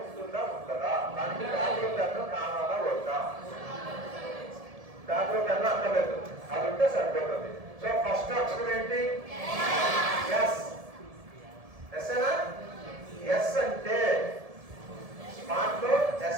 ఉంటుందా ఉంటుందా? దానికి దాంట్లో పెన్ను కావాలా వద్దా? దాంట్లో పెన్ను అక్కర్లేదు, అది ఉంటే సరిపోతుంది. సో ఫస్ట్ అక్షరం ఏంటి? ఎస్. ఎస్ఏనా? ఎస్ అంటే స్మార్ట్ లో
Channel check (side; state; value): left; late; 1.7 ms